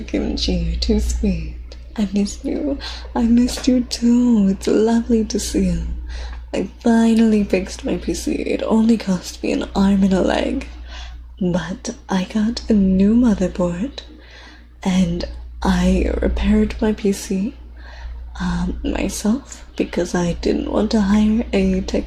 Kimchi, you're too sweet. I missed you. I missed you too. It's lovely to see you. I finally fixed my PC. It only cost me an arm and a leg. But I got a new motherboard. And I repaired my PC myself because I didn't want to hire a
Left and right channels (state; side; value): identical; both; correlation 1.00